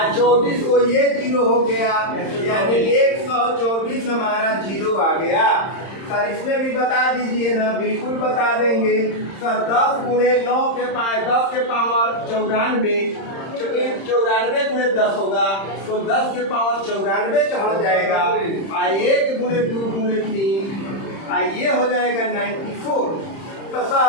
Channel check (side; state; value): right; late; 31 ms